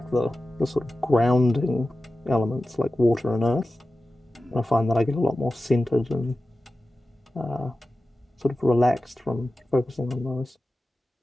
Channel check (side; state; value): both; normal; correlation 0.94